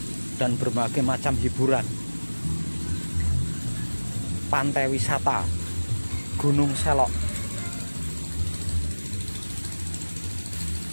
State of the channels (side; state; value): both; inverted; correlation -1.00